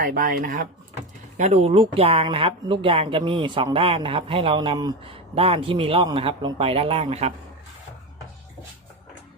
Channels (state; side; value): normal; both; correlation 0.19